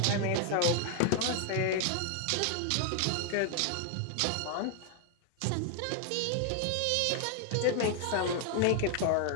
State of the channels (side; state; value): both; different; correlation 0.00